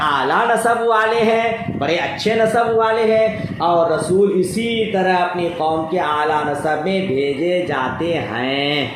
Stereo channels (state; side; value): identical; both; correlation 1.00